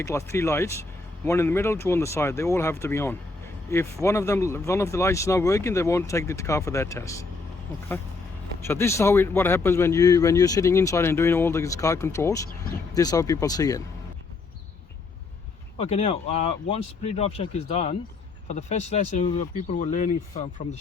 lights, 3 lights, one in the middle, 2 on the side. They all have to be on. If one of the lights is not working, they won't take the car for that test. Okay. So this is what happens when you're sitting inside and doing all these car controls. This is how people see it. Okay, now once pre-drive check is done, for the first lesson, people were learning from the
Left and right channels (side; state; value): right; quieter; 3.9 dB